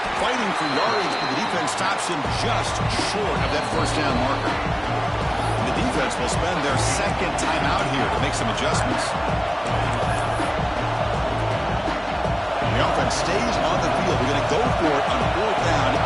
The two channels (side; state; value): both; identical; correlation 1.00